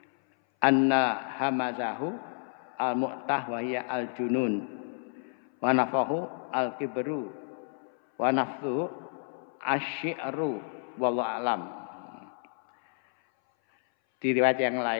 anna hamazahu al-mu'tah wa hiya al-junun wa nafahu al-kibru wa nafthuhu asy-syi'ru wallahu alam. Di riwayat yang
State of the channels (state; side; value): silent; right; 58 dB below the other